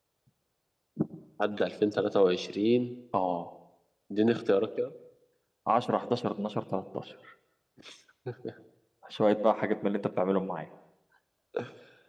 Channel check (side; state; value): both; identical; correlation 1.00